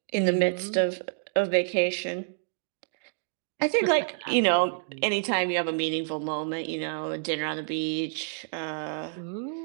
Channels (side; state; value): left; silent; digital silence